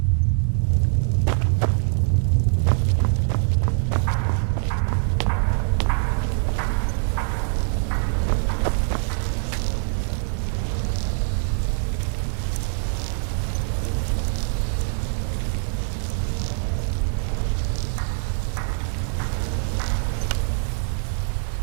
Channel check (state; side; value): silent; left; 63 dB below the other